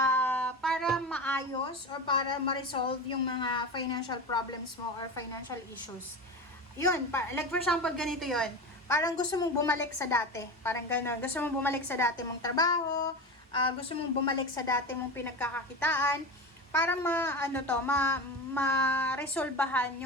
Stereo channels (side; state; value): both; normal; correlation 0.25